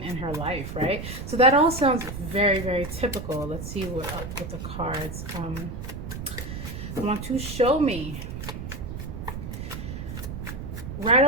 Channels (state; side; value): noise; right; rumble, 7 dB below the sound